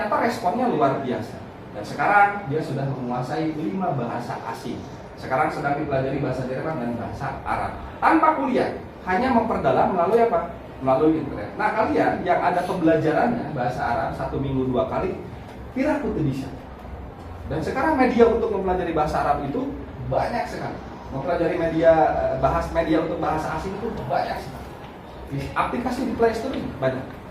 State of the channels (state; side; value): identical; both; correlation 1.00